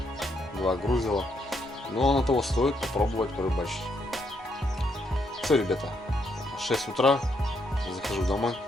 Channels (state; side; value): normal; both; correlation 0.75